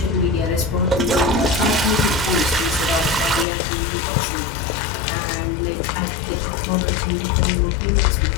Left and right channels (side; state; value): right; drops out; at 3.5 s